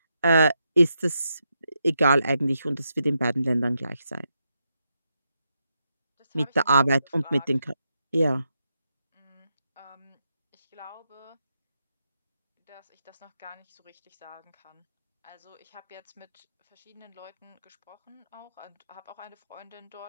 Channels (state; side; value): inverted; both; correlation -0.83